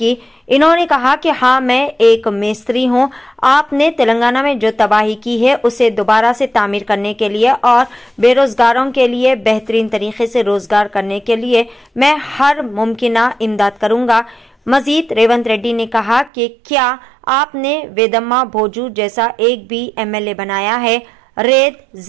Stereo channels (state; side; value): drops out; left; at 16.3 s